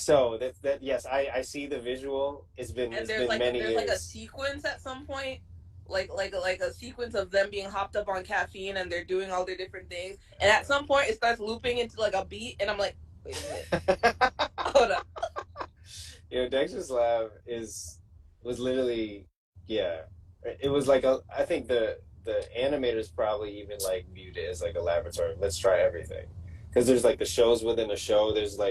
That yes, I see the visual. It's been many years. There's like a sequence at some point, like a sequence of them being hopped up on caffeine and they're doing all their different things. And at some point, it starts looping into like a beat, and I'm like, wait a minute, hold up. You know, Dexter's Lab was literally, it was like I think the animators probably even like viewed it as like a laboratory. Let's try everything, because there's like the shows within a show. There's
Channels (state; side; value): identical; both; correlation 1.00